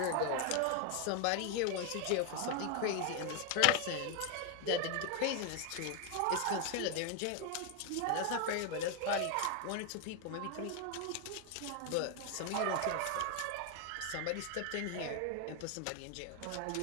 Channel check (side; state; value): both; different; correlation 0.01